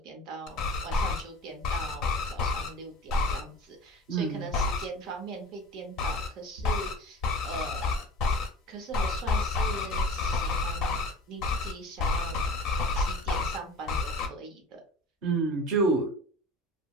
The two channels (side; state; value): both; normal; correlation 0.38